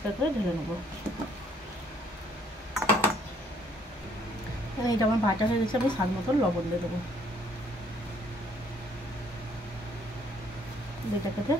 করে ঢেলে নেবো। এটা আমার বাটা হয়ে গেছে। আমি স্বাদ মতন লবণ দিয়ে দেবো। এটাকে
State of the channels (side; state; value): both; normal; correlation 0.64